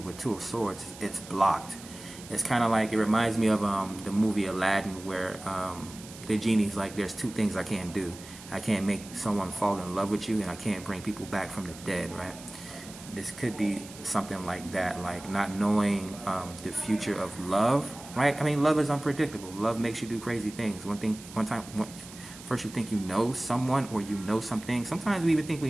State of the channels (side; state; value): right; noise; hiss, 17 dB below the sound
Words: with Two of Swords, it's blocked. It's kind of like, it reminds me of the movie Aladdin, where the genie's like, there's two things I can't do. I can't make someone fall in love with you, and I can't bring people back from the dead, right? This could be something like that, like not knowing the future of love, right? I mean, love is unpredictable. Love makes you do crazy things. First you think you know someone, or you know something. Sometimes we even think we